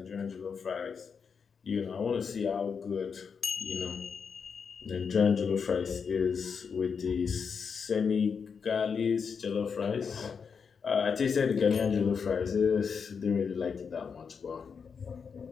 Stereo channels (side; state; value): right; quieter; 6.1 dB